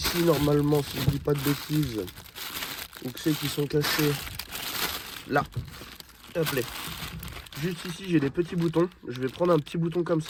normalement, si je dis pas de bêtises, ou que c'est qui sont cachés là. Hop là. Juste ici j'ai des petits boutons. Je vais prendre un petit bouton comme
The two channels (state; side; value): identical; both; correlation 1.00